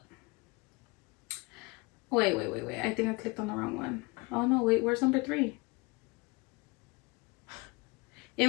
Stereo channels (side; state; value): right; quieter; 26.8 dB